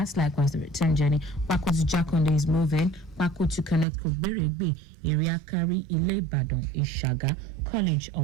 Likewise, the return journey. Bako to Jakonde is moving. Bako to Connect Koberebe, Iriakari, Ile Badon, Ishaga, College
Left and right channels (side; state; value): left; drops out; at 3.9 s